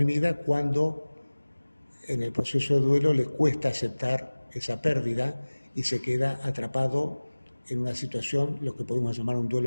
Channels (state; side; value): inverted; both; correlation -1.00